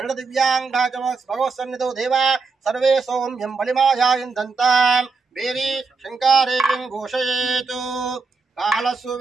దివ్యాంగాచ భగవత్సన్నిధౌ దేవా సర్వే సౌమ్యం బలిమాయాయిందంతాం వేరీ శంకారేయం ఘోషయేతు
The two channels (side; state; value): left; quieter; 4.5 dB